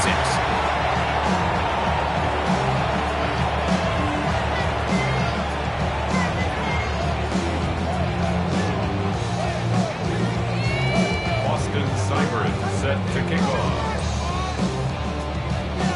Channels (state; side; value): identical; both; correlation 1.00